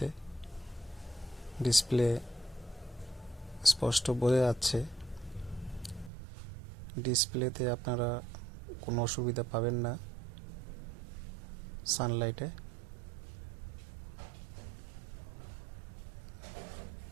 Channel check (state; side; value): drops out; left; at 6.1 s